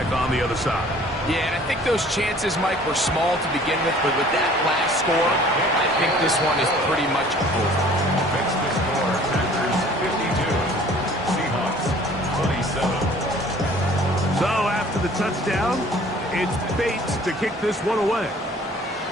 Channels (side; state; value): both; normal; correlation 0.52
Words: on the other side. Yeah, and I think those chances, Mike, were small to begin with, but with that last score, I think this one is pretty much over. Fix the score. Packers 52. Seahawks 27. So after the touchdown, it's Bates to kick this one away.